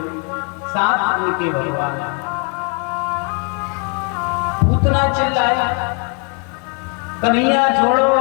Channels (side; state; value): right; quieter; 34.6 dB